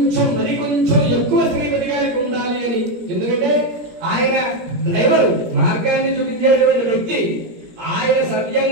ఎక్కువ శ్రీపతి గారికి ఉండాలి అని. ఎందుకంటే ఆయన డ్రైవర్, మార్గాన్ని చూపించేటువంటి వ్యక్తి. ఆయన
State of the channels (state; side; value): late; left; 17 ms